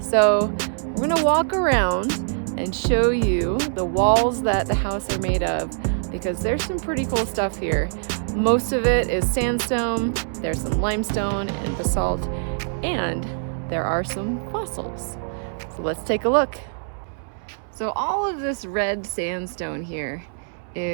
we're going to walk around and show you the walls that the house are made of because there's some pretty cool stuff here. Most of it is sandstone, there's some limestone and basalt, and there are some fossils. So let's take a look. So all of this red sandstone here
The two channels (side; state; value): left; silent; 63 dB below the other